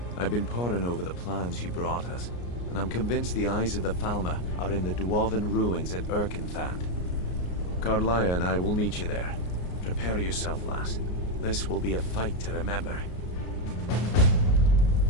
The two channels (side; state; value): right; late; 33 ms